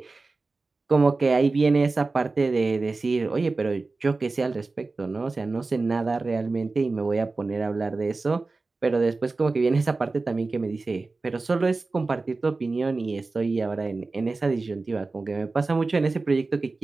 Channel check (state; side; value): quieter; left; 3.6 dB